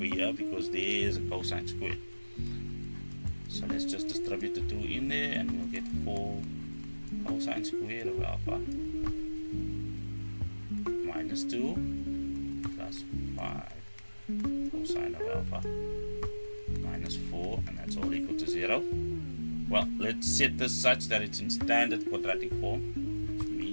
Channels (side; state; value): both; inverted; correlation -1.00